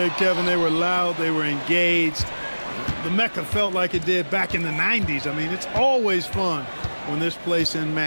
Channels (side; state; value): both; inverted; correlation -1.00